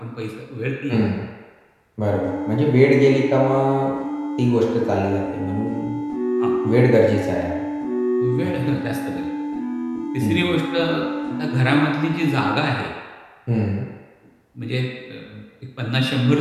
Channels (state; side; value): identical; both; correlation 1.00